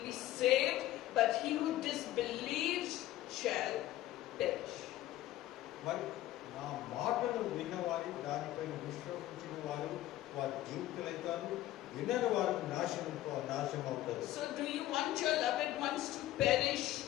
be saved, but he who disbelieves shall perish. మరి నా మాటలు విన్నవారు, దానిపైన విశ్వసించిన వారు వారి జీవితాలు, వినని వారు నాశనం అవుతారు. So do you want your loved ones to perish?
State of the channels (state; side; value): quieter; right; 14.7 dB